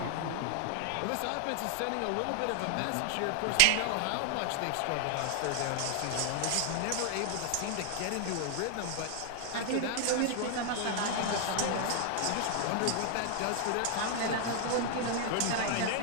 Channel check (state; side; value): different; both; correlation 0.00